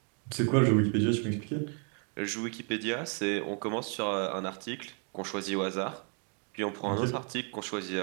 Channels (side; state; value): left; quieter; 39.7 dB